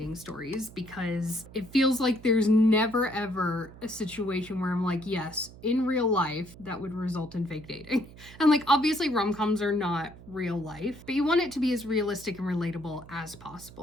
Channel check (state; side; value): noise; right; hum, 19 dB below the sound